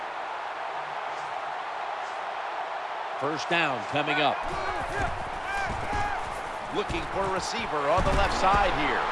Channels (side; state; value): both; identical; correlation 1.00